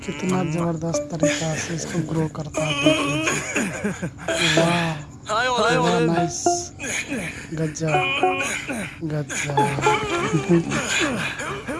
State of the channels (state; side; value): identical; both; correlation 1.00